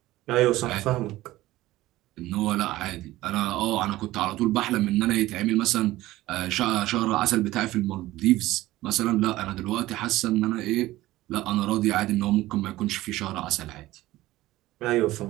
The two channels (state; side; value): quieter; left; 16.8 dB